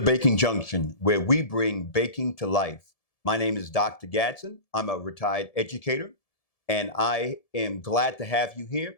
Baking Junction, where we bring baking to life. My name is Dr. Gadsden. I'm a retired educator, and I am glad to have you here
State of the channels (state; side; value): late; right; 1.7 ms